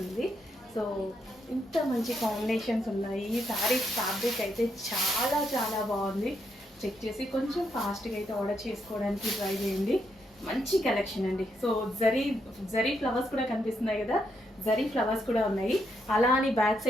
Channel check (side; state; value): both; normal; correlation 0.79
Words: సో ఇంత మంచి కాంబినేషన్స్ ఉన్నాయి. ఈ శారీస్ ఫ్యాబ్రిక్ అయితే చాలా చాలా బాగుంది. చెక్ చేసి కొంచెం ఫాస్ట్గా అయితే ఆర్డర్ చేసుకోవడానికి ట్రై చేయండి. మంచి కలెక్షన్ అండి. సో జరీ ఫ్లవర్స్ కూడా కనిపిస్తున్నాయి కదా, జరీ ఫ్లవర్స్ కూడా ఉన్నాయి. అలా అని బ్యాక్